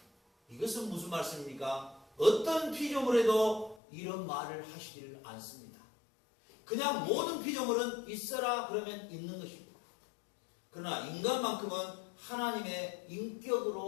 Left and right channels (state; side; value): drops out; right; at 3.8 s